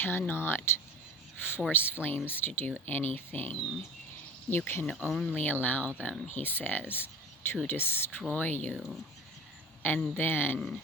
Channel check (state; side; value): normal; both; correlation 0.36